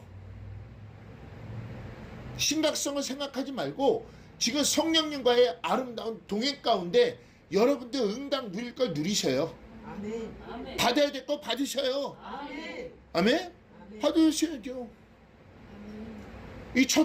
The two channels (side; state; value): both; identical; correlation 1.00